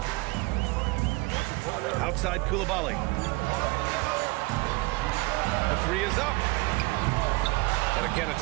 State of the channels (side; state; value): left; quieter; 24.0 dB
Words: Outside Coulibaly. The 3 is up. And again,